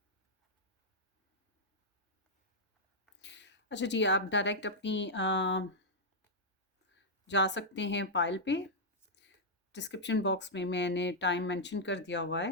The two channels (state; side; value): normal; both; correlation -0.05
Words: अच्छा जी, आप डायरेक्ट अपनी जा सकते हैं पाइल पे। डिस्क्रिप्शन बॉक्स में मैंने टाइम मेंशन कर दिया हुआ